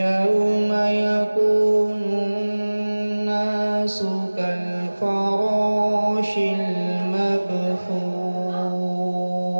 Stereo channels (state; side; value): inverted; both; correlation -1.00